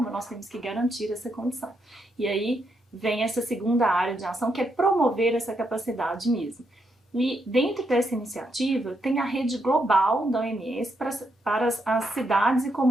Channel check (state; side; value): normal; both; correlation 0.79